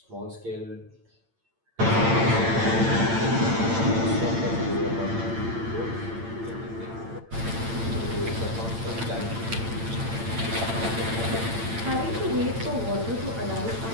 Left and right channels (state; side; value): late; left; 8.8 ms